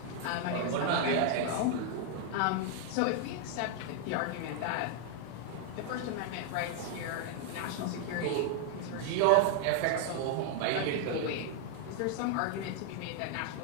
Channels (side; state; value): both; different; correlation 0.00